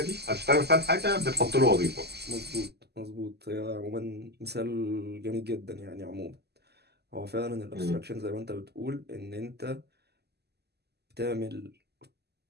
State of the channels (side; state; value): left; late; 0.48 ms